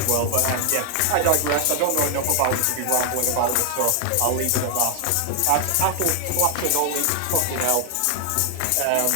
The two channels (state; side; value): different; both; correlation 0.00